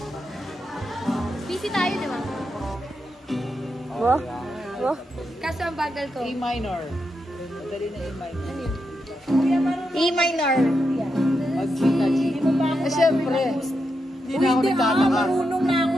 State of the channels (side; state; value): both; normal; correlation 0.85